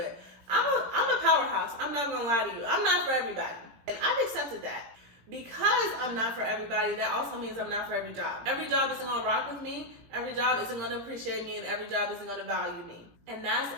I'm a powerhouse. I'm not gonna lie to you. I'm not for everybody. And I've accepted that. Because I'm not for everybody, that also means I'm not for every job. Every job isn't gonna rock with me. Every job isn't gonna appreciate me, and every job isn't gonna value me. And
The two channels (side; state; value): left; late; 17 ms